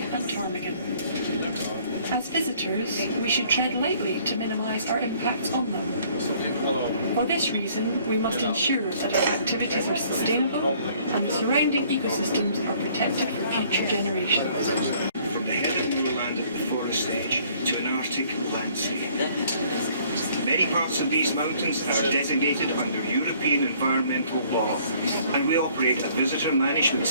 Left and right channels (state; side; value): inverted; both; correlation -0.59